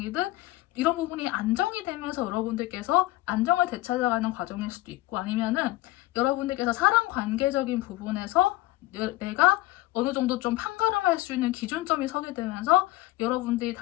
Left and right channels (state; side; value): quieter; right; 17.6 dB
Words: 이런 부분이 안정이 되면서 여러분들께서 안정을 되찾아가는 과정일 수도 있고 아니면은 여러분들께서 사람 관계적인 부분에서 내가 어느 정도 좀 판가름할 수 있는 기준점이 서게 되면서 여러분들이